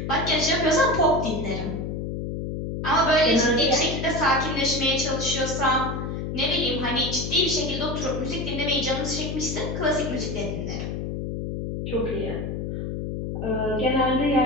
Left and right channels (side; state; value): left; noise; hum, 4 dB below the sound